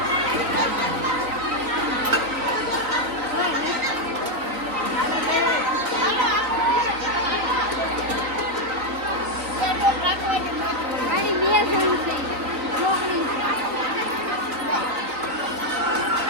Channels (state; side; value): late; left; 3.9 ms